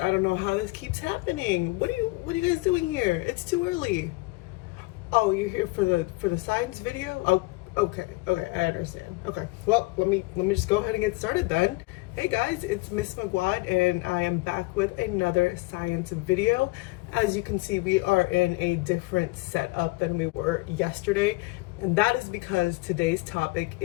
I don't know how this keeps happening. What are you guys doing here? It's too early. Oh, you're here for the science video? Oh, okay, I understand. Okay, well, let me just go ahead and get started then. Hey guys, it's Miss Magwad, and I am back with another science video. As you can see, we are in a different setup than we were yesterday, and that is because today's topic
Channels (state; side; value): quieter; right; 23.2 dB